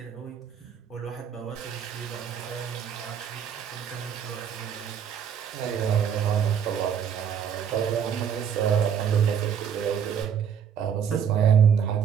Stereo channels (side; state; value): left; quieter; 8.0 dB